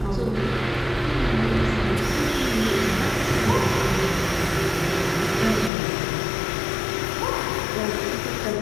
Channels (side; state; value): right; drops out; at 5.7 s